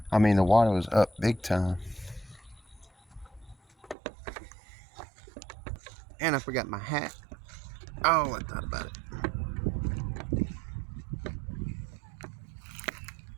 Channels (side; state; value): left; drops out; at 4.0 s